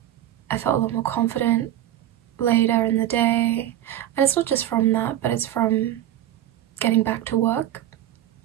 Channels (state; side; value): quieter; left; 12.3 dB